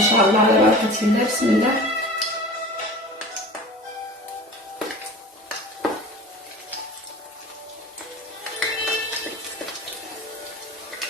شاء الله على بركه الله. بسم الله.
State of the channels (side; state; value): both; normal; correlation 0.38